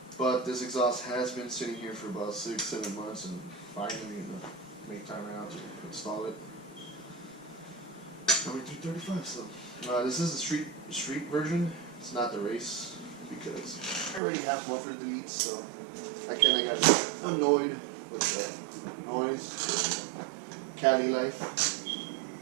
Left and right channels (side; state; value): left; drops out; at 14.2 s